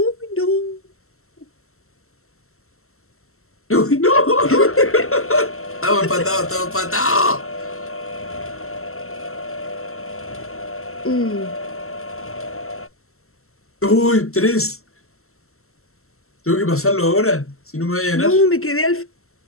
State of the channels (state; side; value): late; right; 0.63 ms